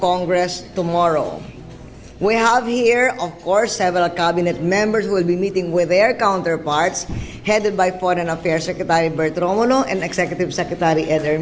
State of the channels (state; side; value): identical; both; correlation 1.00